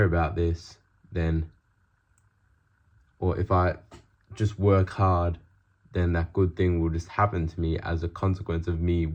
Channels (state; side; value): identical; both; correlation 1.00